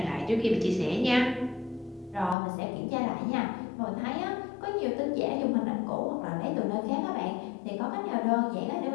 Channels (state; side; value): drops out; right; at 2.4 s